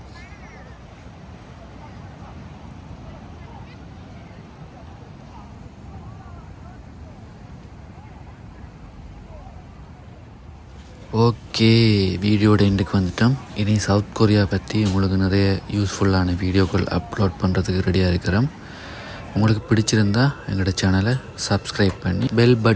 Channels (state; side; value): identical; both; correlation 1.00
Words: ஓகே, வீடியோட எண்டுக்கு வந்துட்டோம். இனி சவுத் கொரியா பற்றி உங்களுக்கு நிறைய யூஸ்ஃபுல்லான வீடியோக்கள் அப்லோட் பண்ணுறதுக்கு ரெடியாக இருக்கிறோம். உங்களுக்கு பிடிச்சிருந்தா எங்களோட சேனலை சப்ஸ்கிரைப் பண்ணி பெல்